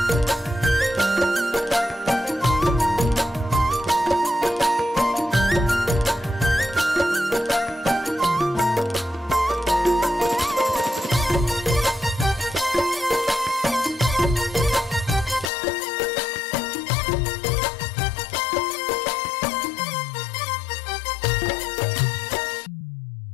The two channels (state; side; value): drops out; right; at 15.5 s